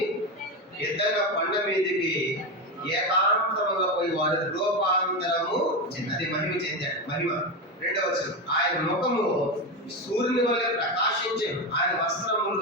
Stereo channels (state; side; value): normal; both; correlation 0.15